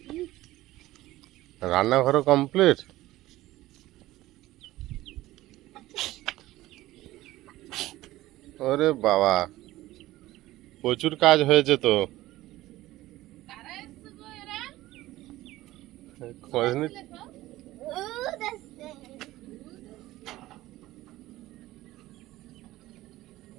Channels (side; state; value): left; quieter; 16.6 dB